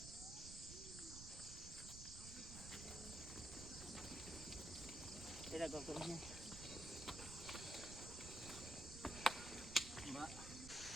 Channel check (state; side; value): noise; right; rumble, 9 dB below the sound